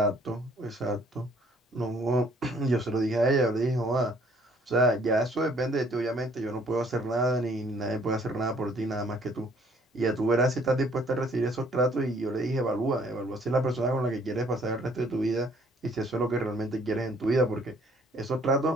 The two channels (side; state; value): both; normal; correlation 0.61